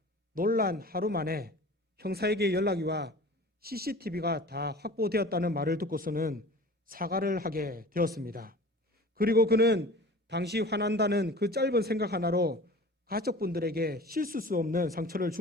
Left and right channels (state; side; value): normal; both; correlation 0.41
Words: 논란 하루 만에 형사에게 연락이 와 CCTV가 다 확보되었다는 말을 듣고서는 사과를 하게 되었습니다. 그리고 그는 당시 화난다는 그 짧은 생각 하나로 가족분들에게 씻을 수 없는 상처를